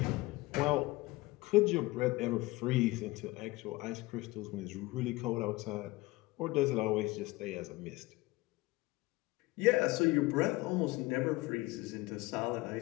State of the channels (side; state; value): right; quieter; 21.0 dB